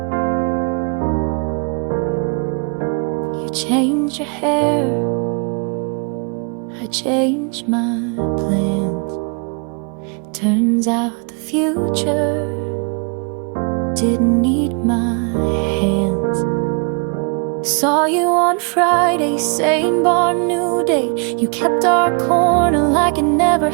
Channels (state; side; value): quieter; left; 35.8 dB